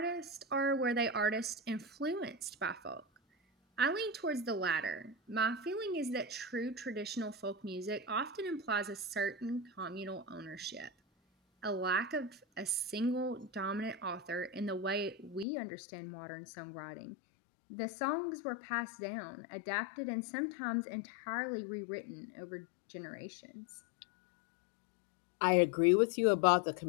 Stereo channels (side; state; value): right; drops out; at 15.5 s